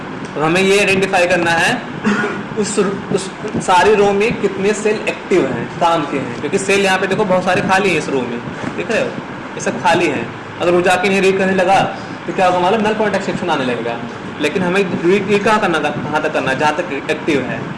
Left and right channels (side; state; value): both; identical; correlation 1.00